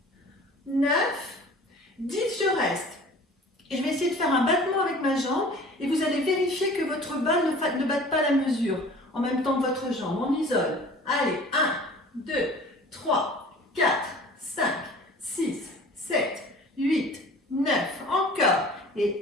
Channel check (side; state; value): both; normal; correlation 0.45